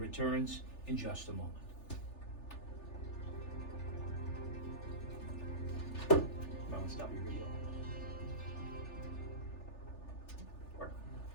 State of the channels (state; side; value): late; right; 3.4 ms